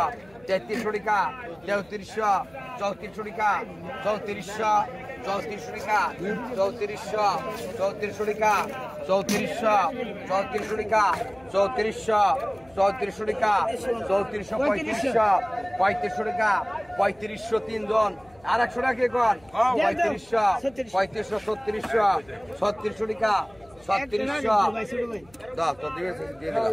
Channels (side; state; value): left; noise; hum, 28 dB below the sound